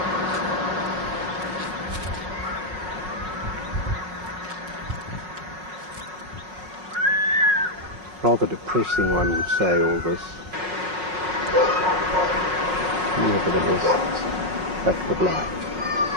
Rather depressing, one would say, all this. Nevertheless, it's fact of life.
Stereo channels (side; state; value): left; late; 5.5 ms